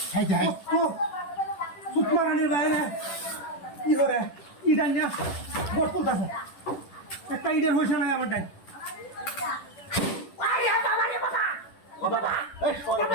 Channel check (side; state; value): right; late; 10 ms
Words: হাই হাই সুতমারানির বাইরে কি করে ইডান না বট তুলতাছে একটা ইডের হয়েছে না আমার ডান ও বাবা এই শহরের